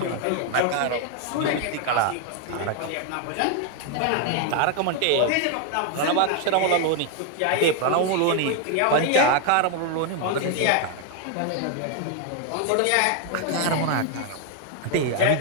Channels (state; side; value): different; both; correlation 0.00